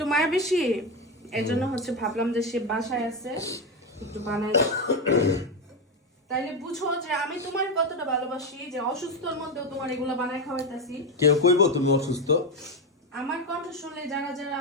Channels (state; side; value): normal; both; correlation 0.12